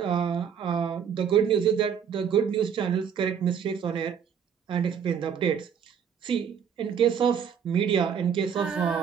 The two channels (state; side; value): quieter; left; 7.6 dB